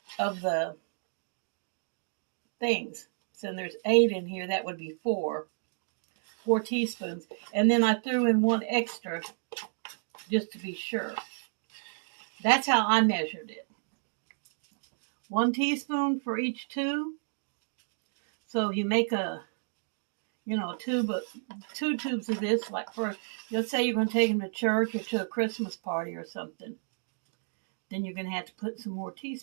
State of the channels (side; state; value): left; silent; digital silence